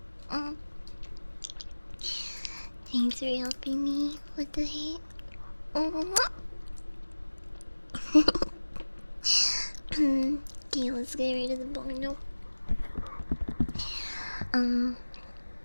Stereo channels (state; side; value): inverted; both; correlation -1.00